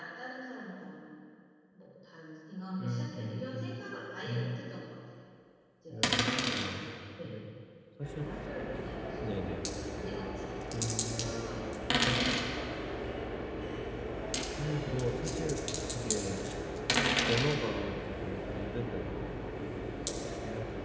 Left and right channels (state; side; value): identical; both; correlation 1.00